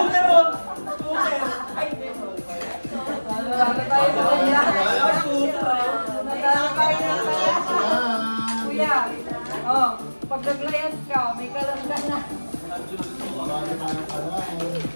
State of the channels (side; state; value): both; inverted; correlation -1.00